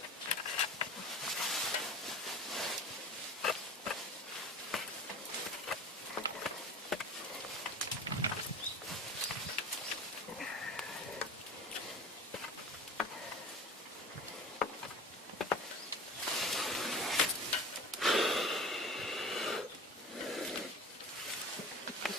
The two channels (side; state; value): both; normal; correlation 0.37